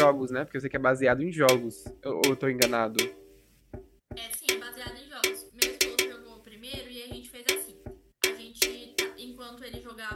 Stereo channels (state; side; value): identical; both; correlation 1.00